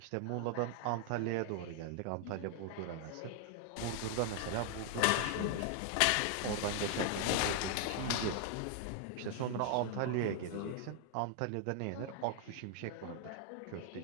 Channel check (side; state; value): both; different; correlation 0.00